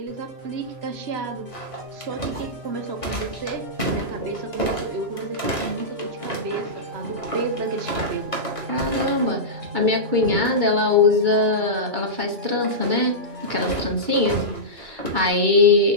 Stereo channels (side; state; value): left; late; 2.9 ms